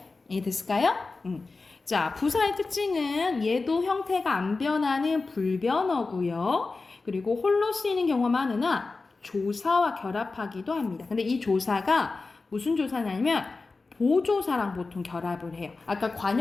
이해됐을까요? 자, 부사의 특징은 얘도 형태가 안 변하는 불변어고요. 그리고 홀로 쓰이는 경우가 많으나 조사와 결합하기도 합니다. 근데 이 조사가 무슨 조사냐면 보조사랑 보통 결합을 해요. 아까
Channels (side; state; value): right; quieter; 3.8 dB